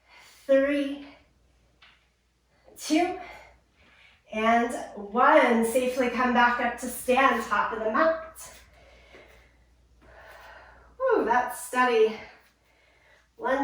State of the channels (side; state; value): both; identical; correlation 1.00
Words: 3, 2, and 1. Safely come back up to stand, top of the mat. Ooh, that steady